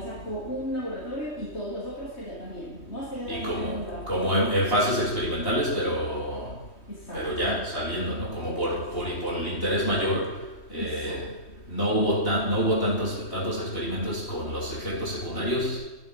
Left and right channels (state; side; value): late; right; 3.2 ms